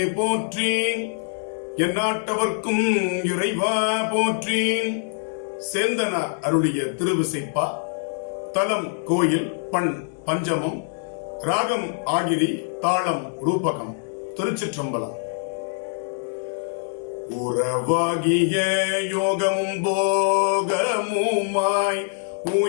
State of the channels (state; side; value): silent; right; digital silence